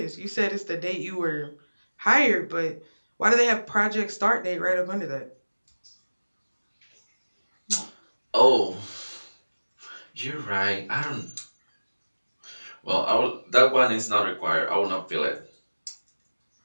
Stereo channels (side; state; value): both; inverted; correlation -1.00